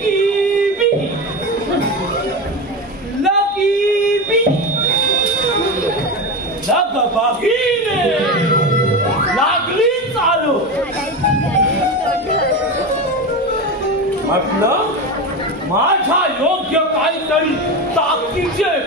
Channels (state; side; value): normal; both; correlation 0.21